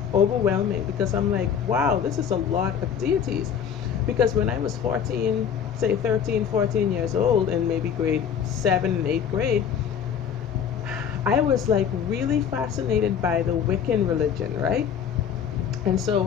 overwhelming, because I'm like, wow, this is a lot of deities. Because when I was 14, say 13, 14 years old, in maybe grade 7 and 8th grade, I was like really fascinated by the Wiccan religion, right? And so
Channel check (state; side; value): quieter; right; 7.9 dB